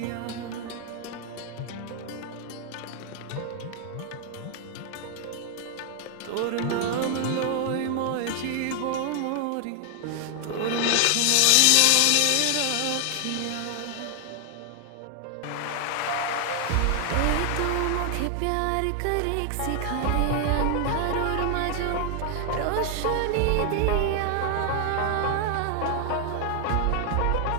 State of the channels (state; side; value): different; both; correlation 0.00